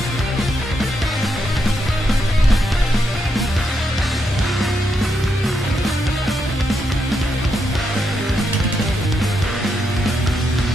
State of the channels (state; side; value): normal; both; correlation 0.81